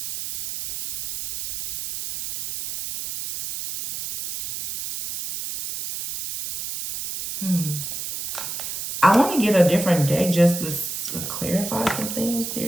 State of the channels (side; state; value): right; noise; hiss, 6 dB below the sound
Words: I want to get a different deck just to clarify some things